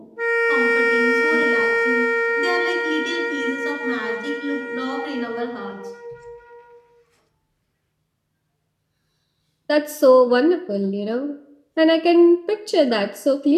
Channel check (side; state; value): both; identical; correlation 1.00